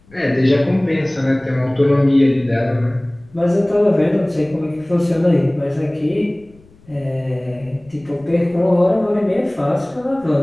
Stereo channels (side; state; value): left; noise; rumble, 28 dB below the sound